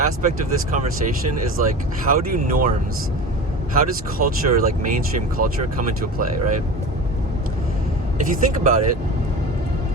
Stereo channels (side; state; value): both; normal; correlation 0.32